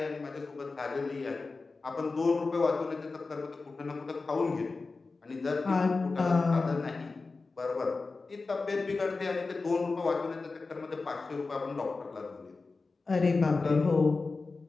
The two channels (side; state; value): right; quieter; 3.9 dB